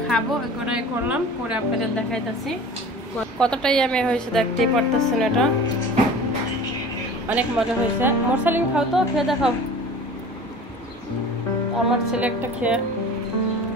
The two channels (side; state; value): both; normal; correlation 0.40